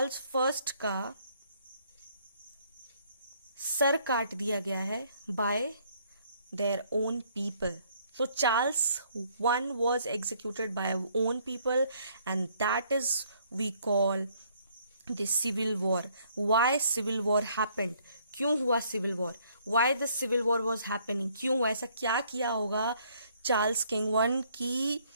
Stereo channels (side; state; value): both; inverted; correlation -0.65